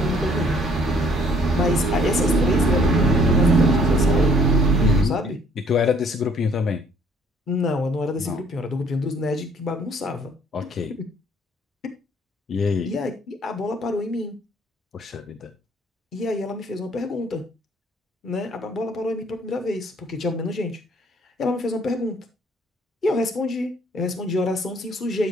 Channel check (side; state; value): both; normal; correlation 0.60